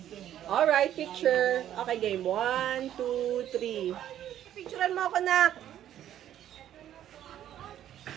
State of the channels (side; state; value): left; quieter; 11.3 dB